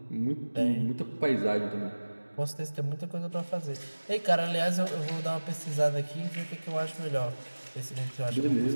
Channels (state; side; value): inverted; both; correlation -1.00